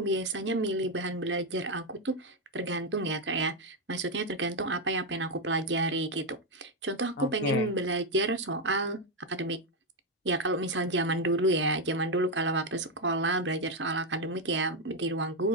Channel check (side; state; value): both; normal; correlation 0.04